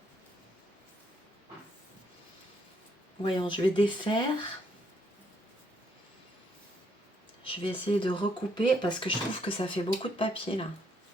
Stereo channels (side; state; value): both; normal; correlation 0.73